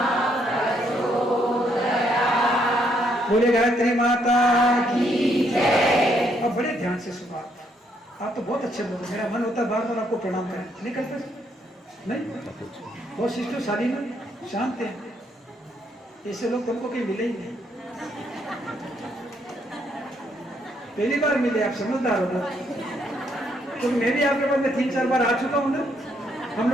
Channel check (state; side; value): normal; both; correlation 0.72